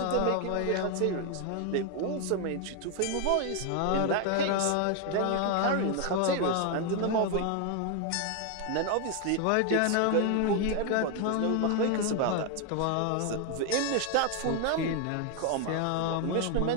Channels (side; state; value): both; different; correlation 0.01